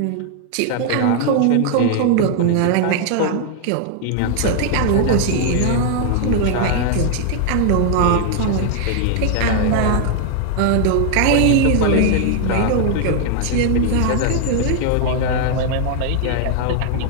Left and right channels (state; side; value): different; both; correlation 0.00